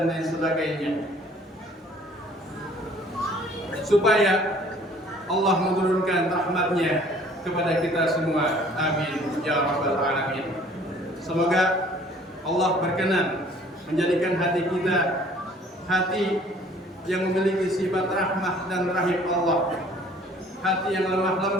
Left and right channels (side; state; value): both; normal; correlation 0.55